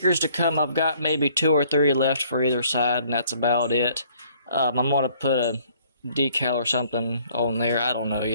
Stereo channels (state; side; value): inverted; both; correlation -0.60